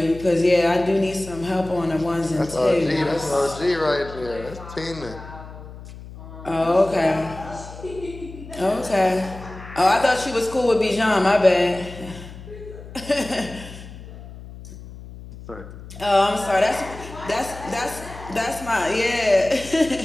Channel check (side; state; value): left; noise; hum, 15 dB below the sound